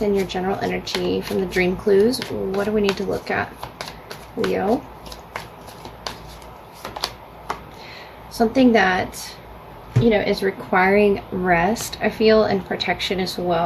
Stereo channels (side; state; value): both; identical; correlation 1.00